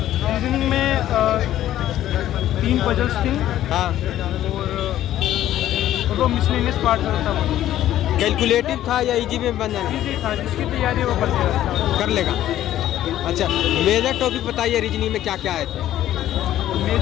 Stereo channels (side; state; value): right; quieter; 12.8 dB